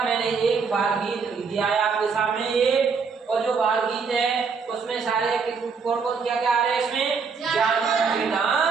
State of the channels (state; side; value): quieter; left; 5.3 dB